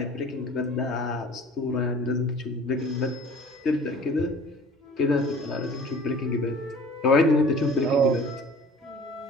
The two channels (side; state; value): both; normal; correlation 0.46